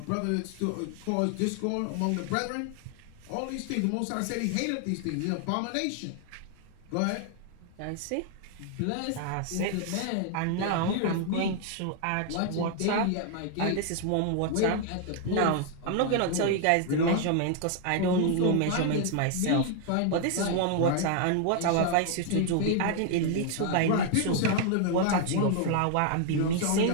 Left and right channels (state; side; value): different; both; correlation 0.00